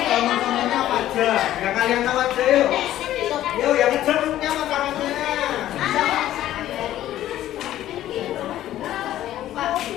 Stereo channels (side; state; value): right; quieter; 13.2 dB